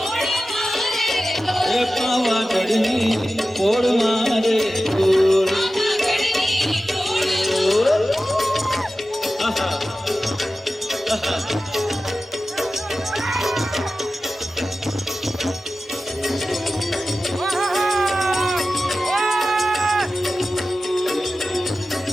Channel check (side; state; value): both; normal; correlation 0.94